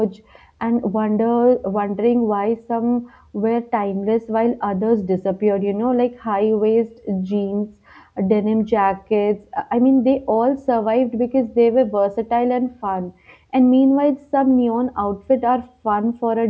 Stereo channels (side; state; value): both; identical; correlation 1.00